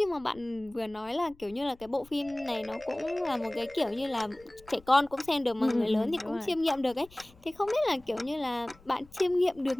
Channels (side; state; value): left; noise; rumble, 26 dB below the sound